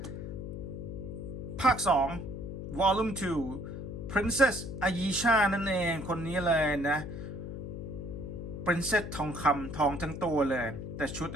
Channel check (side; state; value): left; noise; hum, 7 dB below the sound